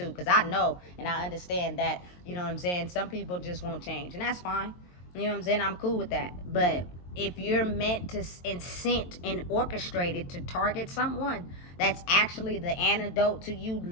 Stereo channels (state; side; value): late; right; 22 ms